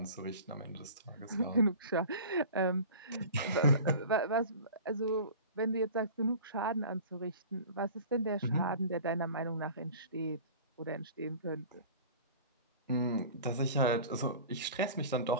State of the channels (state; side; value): inverted; both; correlation -0.41